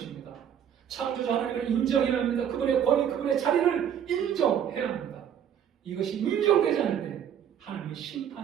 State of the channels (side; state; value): left; quieter; 9.1 dB